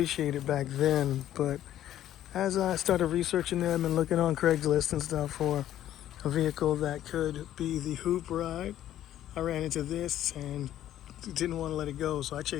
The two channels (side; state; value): right; quieter; 12.2 dB